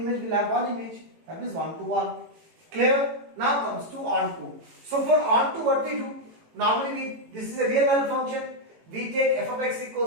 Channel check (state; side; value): late; left; 18 ms